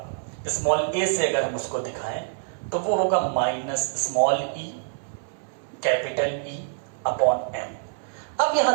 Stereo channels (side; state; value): left; silent; 61 dB below the other